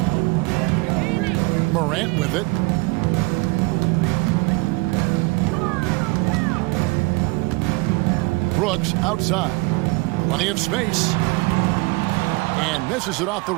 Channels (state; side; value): quieter; left; 25.6 dB